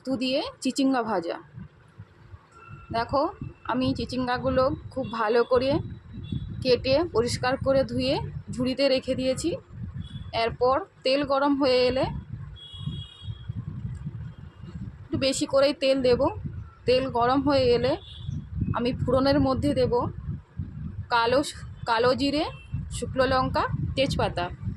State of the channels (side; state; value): both; identical; correlation 1.00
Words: দিয়ে চিচিঙ্গা ভাজা। দেখো, আমি চিচিঙ্গাগুলো খুব ভালো করে কেটে পরিষ্কার করে ধুয়ে ঝুড়িতে রেখে দিয়েছি। এরপর তেল গরম হয়ে এলে একটু বেশি করেই তেল দেব। তেল গরম হয়ে এলে আমি ফোড়নের মধ্যে দেব কালো কালো জিরে, শুকনো লঙ্কা, তেজপাতা